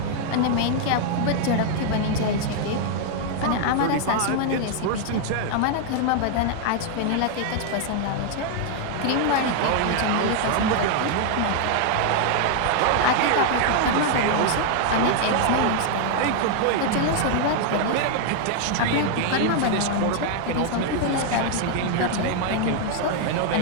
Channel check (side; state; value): both; different; correlation 0.00